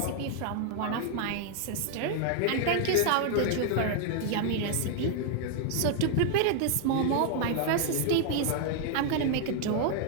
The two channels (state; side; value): different; both; correlation 0.00